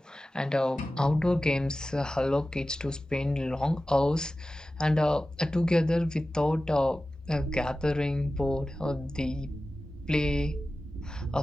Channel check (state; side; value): normal; both; correlation 0.95